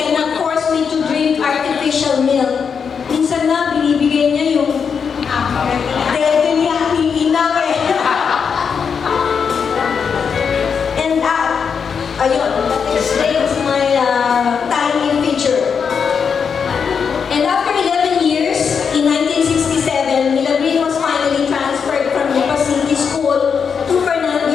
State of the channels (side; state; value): right; quieter; 6.4 dB